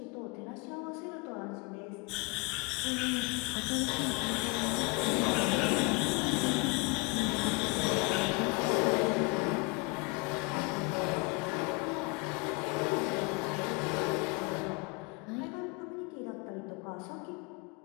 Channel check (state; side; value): quieter; right; 29.3 dB